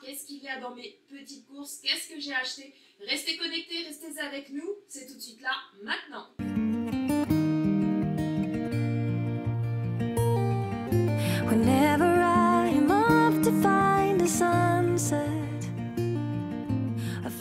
qu'est-ce qu'il y a dans mes petites courses, qu'est-ce que j'ai acheté, restez connectés, restez avec nous. C'est tout de suite là, maintenant. Whenever I'm off to find a sunset, a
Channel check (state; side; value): identical; both; correlation 1.00